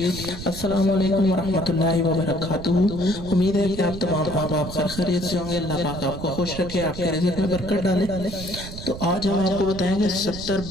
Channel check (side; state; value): right; noise; rumble, 10 dB below the sound